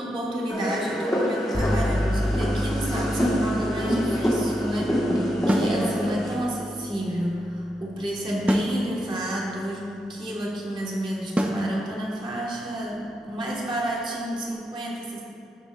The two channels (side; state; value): both; normal; correlation 0.85